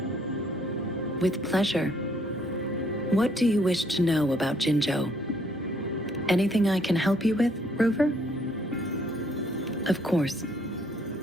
With pleasure. What do you wish to know about Jinzhou? Anything I can help you with, Rover? Of course.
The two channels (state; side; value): normal; both; correlation 0.66